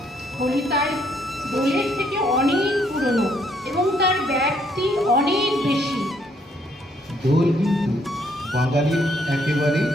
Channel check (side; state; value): both; normal; correlation 0.69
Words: হোলি তাই দোলের থেকে অনেক পুরনো এবং তার ব্যাপ্তি অনেক বেশি। দোল কিন্তু বাঙালির একেবারে